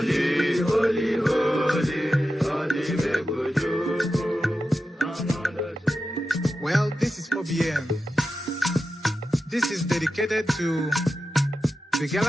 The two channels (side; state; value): both; normal; correlation 0.91